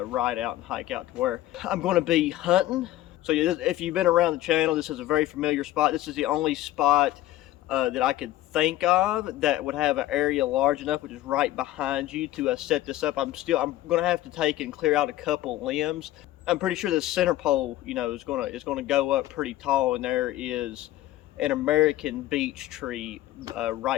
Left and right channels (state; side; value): quieter; right; 14.9 dB